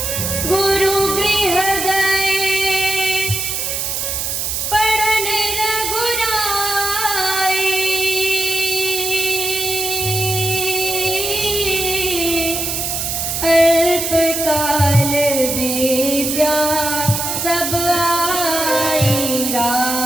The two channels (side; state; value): right; noise; hiss, 2 dB below the sound